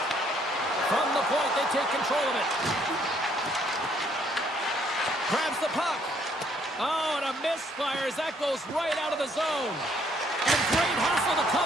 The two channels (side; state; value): both; normal; correlation 0.66